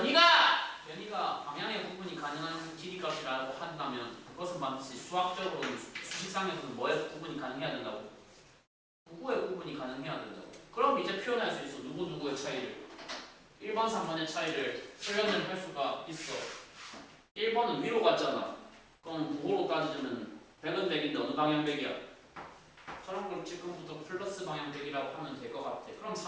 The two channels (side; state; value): both; identical; correlation 1.00